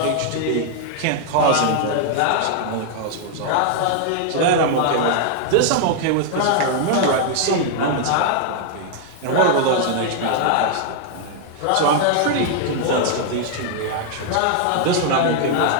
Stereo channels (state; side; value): different; both; correlation 0.00